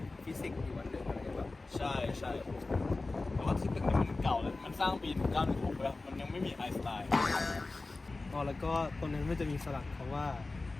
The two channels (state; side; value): quieter; right; 3.4 dB